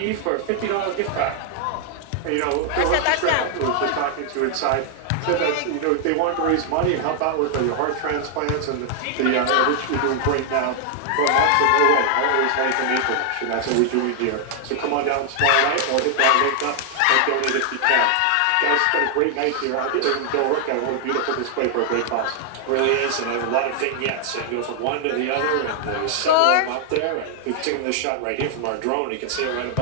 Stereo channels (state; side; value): different; both; correlation 0.00